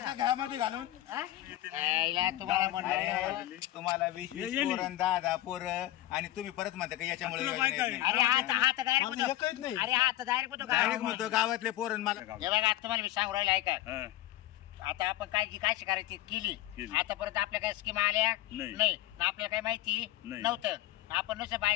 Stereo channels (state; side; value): quieter; right; 15.1 dB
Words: घरामध्ये घालून हा? यायला तुम्हाला म्हणलं अरे, तुम्हाला 20-20 ये- ये पोरं 10-10 पोरं आणि तुम्ही परत म्हणता का याच्यामुळे तुला योजना बायका येत आहे. नाही. अरे हात डायरेक्ट माझं होतो एकच नाही. अरे हात डायरेक्ट होतो डायरेक्ट का म्हणतो गावातले पोरं मला हे बघा तुम्हाला मी सांगू राहिलो ऐका हा. आता आपण काय जी काय करायची केली केली. आतापर्यंत आपल्या काय स्कीम आल्या नाही. नाही ना आपल्याला काही माहिती नाही. नव्हतं आपण नुसतं